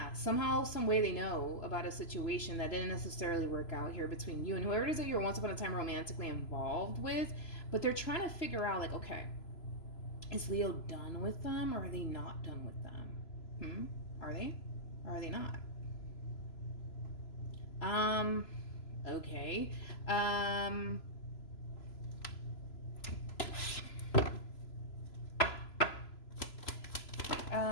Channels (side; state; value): right; late; 3.0 ms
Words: somehow, some way they know about a situation that didn't necessarily work out here between you and whoever it is that you were once upon a time romantically involved with, but they're trying to figure out, like, okay, is Leo done with them or are they not done with them? Are they? Or are they not? Okay.